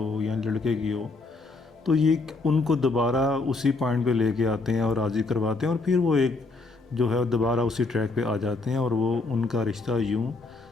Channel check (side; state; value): right; quieter; 3.6 dB